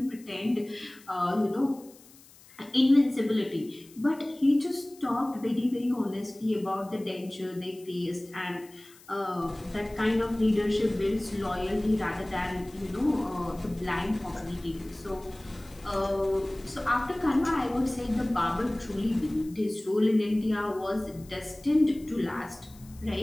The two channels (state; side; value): noise; left; hiss, 24 dB below the sound